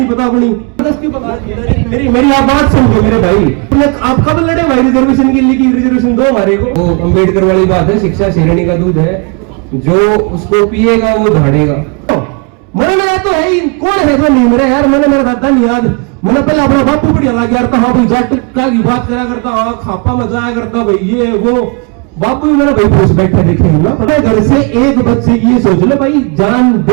पता अपनी। मेरी आप बात समझो मेरे भाई। आप कब लड़े भाई रिजर्वेशन के लिए? रिजर्वेशन दो हमारे को। वो अम्बेडकर वाली बात है, शिक्षा शेरनी का दूध है, जो उसको पिएगा वो धाड़ेगा। मरना तो है ही, कौन है जो नहीं मरे यार? मैंने मेरा दादा नहीं याद, मैंने पहले अपना बापू बढ़िया लग गया था। हाँ भाई जाट का की बात करा करता, हाँ खापा में जाया करता भाई, ये वो बापू भी मेरा भाई पूछ बैठे देखे ना। पता घर से एक बच्चे की ये सोच लो भाई, जान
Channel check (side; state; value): left; quieter; 33.0 dB